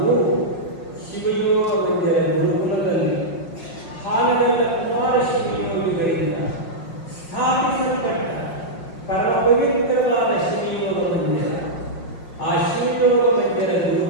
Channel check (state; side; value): late; right; 5.5 ms